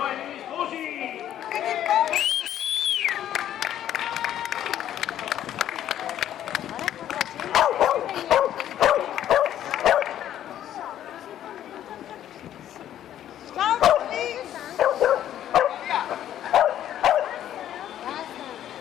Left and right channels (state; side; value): quieter; right; 11.4 dB